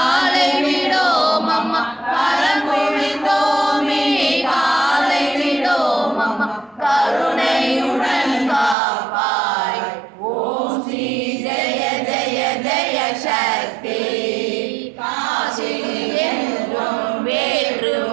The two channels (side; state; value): left; drops out; at 8.8 s